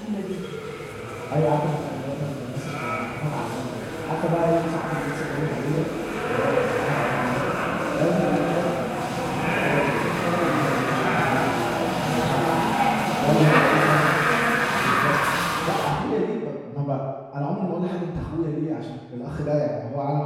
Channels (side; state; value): both; identical; correlation 1.00